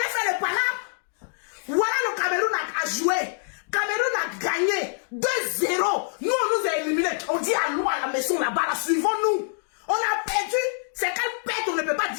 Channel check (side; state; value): right; silent; digital silence